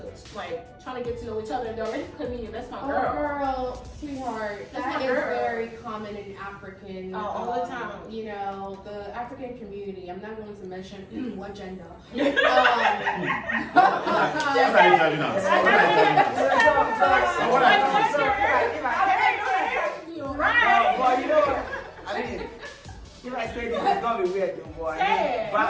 like trying to get to know each other. They're already putting you. That's my girl. Girl, sweetheart, That's that my is girl. very common in African. All the time. The African community. I'm not going to mention what gender. What are you having No, but you know what? I mean, if I say this, it's gonna be weird, though, boy. Say it.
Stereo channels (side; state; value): both; identical; correlation 1.00